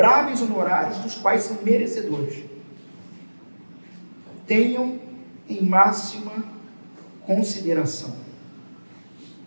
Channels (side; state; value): both; inverted; correlation -1.00